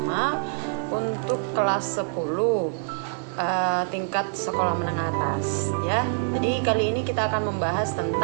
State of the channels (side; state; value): left; silent; 61 dB below the other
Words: untuk kelas 10 tingkat sekolah menengah atas ya. Jadi kali ini kita akan membahas